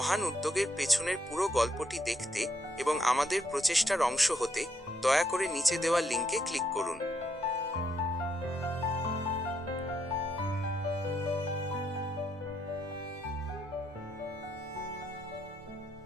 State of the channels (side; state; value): both; normal; correlation 0.76